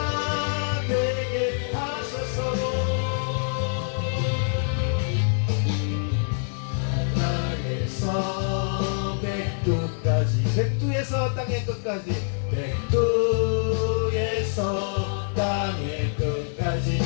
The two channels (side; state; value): right; silent; digital silence